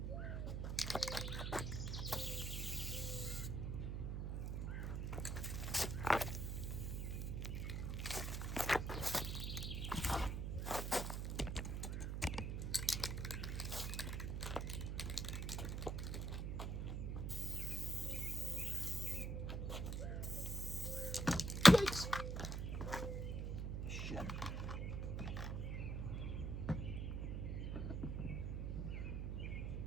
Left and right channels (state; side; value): noise; right; hum, 1 dB below the sound